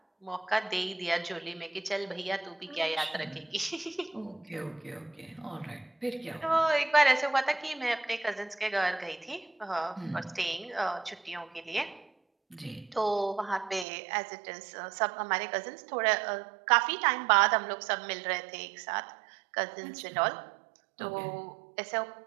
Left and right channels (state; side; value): drops out; left; at 13.9 s